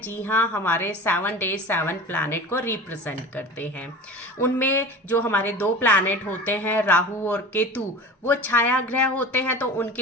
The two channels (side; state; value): both; normal; correlation 0.35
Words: जी हाँ, हमारे 7 डेज 7 प्लैनेट को रिप्रेजेंट करते हैं। उनमें जो हमारे 2 प्लैनेट होते हैं, राहु और केतु, वो छाया ग्रह होते हैं, तो